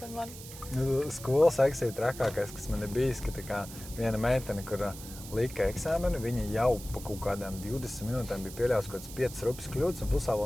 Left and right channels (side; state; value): right; noise; hiss, 14 dB below the sound